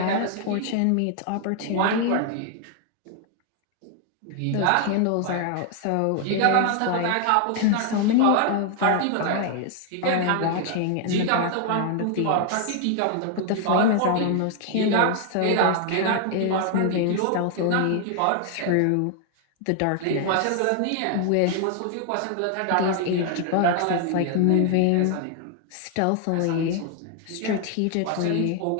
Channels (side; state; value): both; different; correlation 0.00